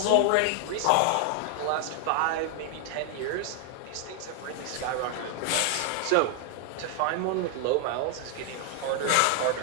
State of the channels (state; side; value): different; both; correlation 0.00